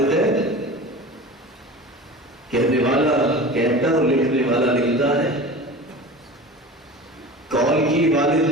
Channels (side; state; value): both; normal; correlation 0.35